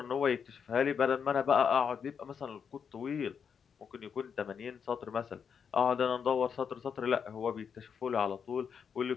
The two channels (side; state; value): right; quieter; 6.9 dB